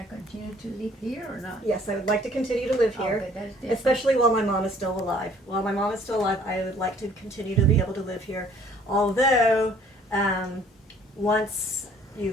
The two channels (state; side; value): normal; both; correlation 0.57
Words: continue to live here or not? yes, I would like to continue to live here. Okay, that's different. Especially while my mom is still alive. While my mom is still alive, I would like to continue to be able to live here. Although, once